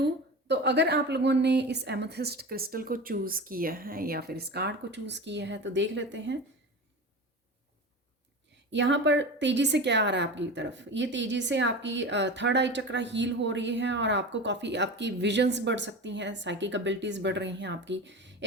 तो अगर आप लोगों ने इस एमेथिस्ट क्रिस्टल को चूज़ किया है या फिर इस कार्ड को चूज़ किया है, तो देख लेते हैं यहाँ पर तेज़ी से क्या आ रहा है आपकी तरफ। ये तेज़ी से आपकी थर्ड आई चक्रा हील हो रही है, और आपको काफ़ी आपकी विजन्स बढ़ सकती हैं, साइकिक एबिलिटीज़ बढ़ रही हैं आपकी।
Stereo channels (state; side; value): normal; both; correlation 0.29